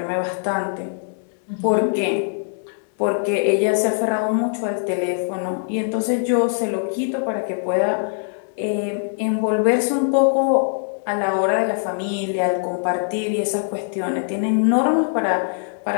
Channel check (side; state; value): right; silent; digital silence